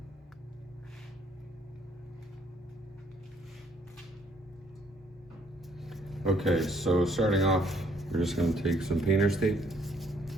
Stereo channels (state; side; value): normal; both; correlation 0.66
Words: Okay, so starting off, we're just going to take some painter's tape.